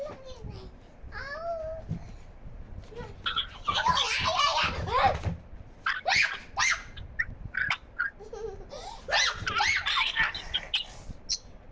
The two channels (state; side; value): identical; both; correlation 1.00